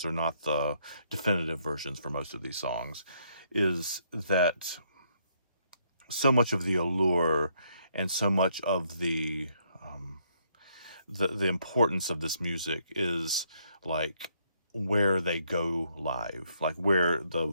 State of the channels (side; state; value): both; inverted; correlation -0.72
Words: are not the definitive versions for most of these songs is that so much of the allure and so much of the importance of this music is like where they go live, like where